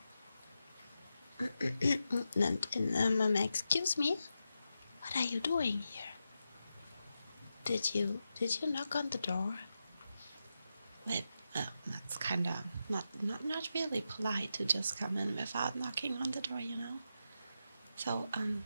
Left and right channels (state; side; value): inverted; both; correlation -0.88